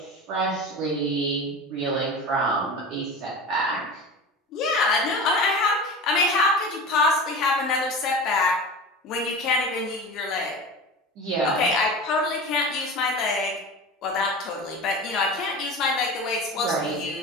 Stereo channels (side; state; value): both; normal; correlation 0.31